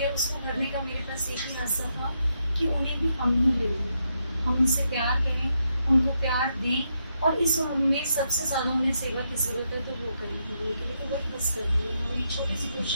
उसको भरने का मेरे पास एक ही रास्ता था कि उन्हें भी हम ही ले लें, हम उनसे प्यार करें, उनको प्यार दें, और इस उम्र में सबसे ज़्यादा उन्हें सेवा की ज़रूरत है तो वो करें। उनके लिए तो वही बस कर रही है। हमारी छोटी सी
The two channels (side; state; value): both; inverted; correlation -0.81